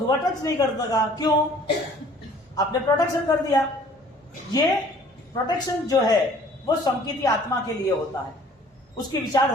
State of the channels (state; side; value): normal; both; correlation 0.54